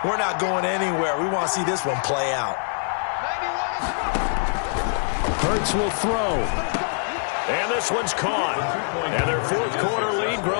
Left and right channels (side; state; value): right; silent; digital silence